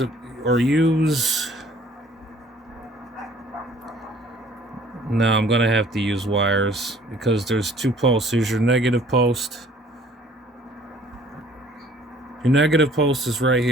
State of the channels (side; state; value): both; normal; correlation 0.56